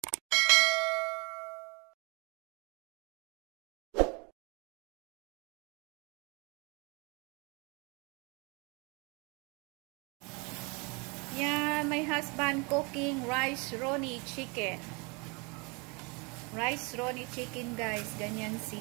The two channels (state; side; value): quieter; left; 30.3 dB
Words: Yan, my husband cooking rice roni chicken. Rice roni chicken guys, ganyan